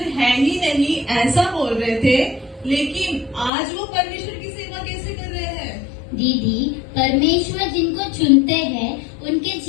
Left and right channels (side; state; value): right; drops out; at 3.5 s